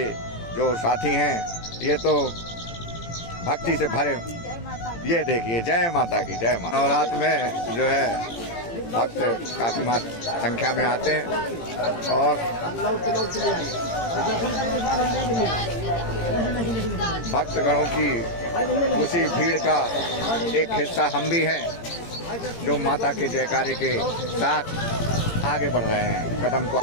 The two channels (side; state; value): right; late; 18 ms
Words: जो साथी हैं ये तो भक्ति से भरे। ये देखिए, जय माता की, जय माता। और रात में जो है भक्त काफ़ी संख्या में आते हैं और भक्तगणों की उसी भीड़ का एक हिस्सा हम भी हैं, जो माता के जयकारे के साथ आगे बढ़ रहे हैं। कदम को